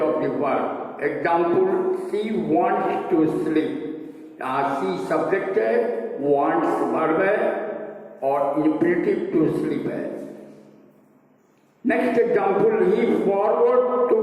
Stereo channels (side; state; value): both; identical; correlation 1.00